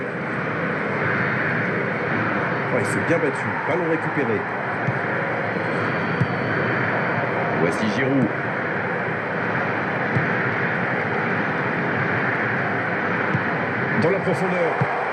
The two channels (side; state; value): both; identical; correlation 1.00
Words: Oh, il s'est bien battu. Ballon récupéré. Voici Giroud. Dans la profondeur.